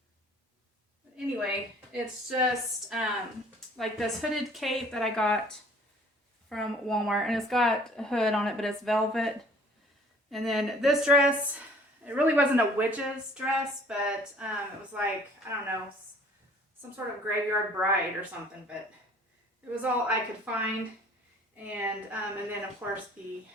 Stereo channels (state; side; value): normal; both; correlation 0.54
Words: Anyway, it's just like this hooded cape that I got from Walmart, and it's got a hood on it, but it's velvet. And then this dress, it really wasn't a witch's dress, but it was like, I don't know, some sort of graveyard bride or something, but it was all I could find. And then of course the